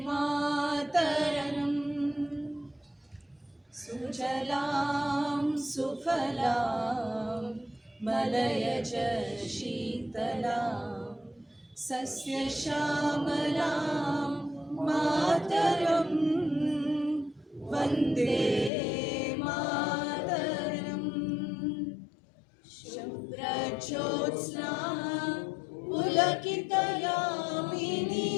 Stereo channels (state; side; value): drops out; right; at 18.7 s